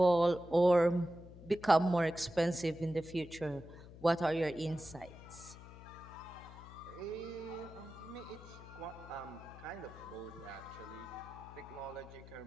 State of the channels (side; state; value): left; noise; hum, 16 dB below the sound